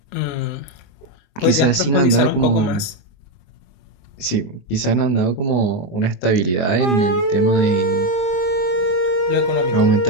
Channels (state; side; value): late; right; 22 ms